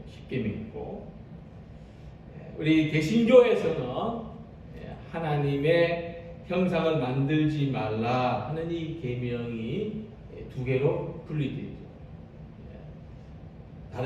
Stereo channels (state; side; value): identical; both; correlation 1.00